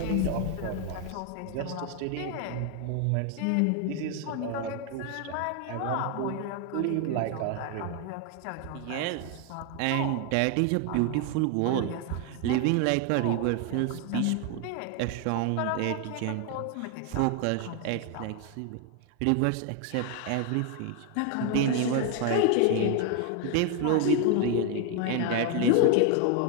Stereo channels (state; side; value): different; both; correlation 0.01